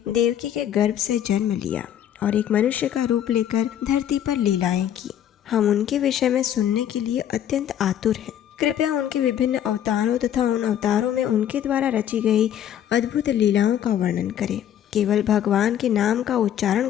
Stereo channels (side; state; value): right; quieter; 10.4 dB